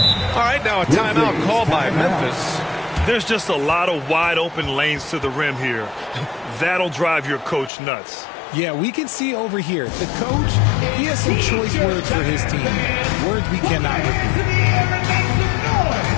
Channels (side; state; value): right; drops out; at 7.7 s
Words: All right, now a timeout called by Memphis. There's just a lot of wide open lanes to the rim here. That'll drive your coach nuts. Yeah, we can see over here. The coach, he has some choice words for his team. Words we cannot repeat.